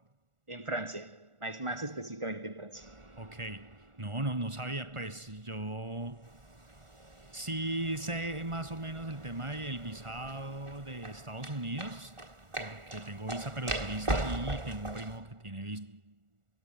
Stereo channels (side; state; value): left; late; 1.4 ms